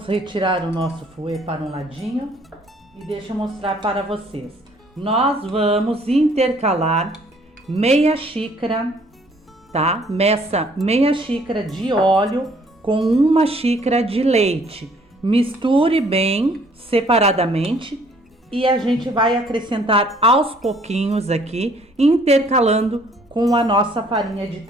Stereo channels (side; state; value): both; normal; correlation 0.60